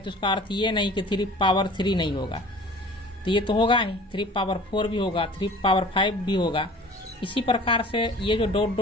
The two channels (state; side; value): normal; both; correlation 0.45